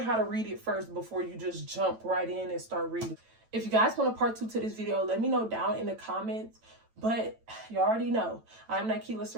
how to read it first before you just jump right in and start reading. If you guys want a part 2 to this video, let me know down in the comments. But you already know, I'm Nakila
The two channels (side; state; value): left; late; 9.0 ms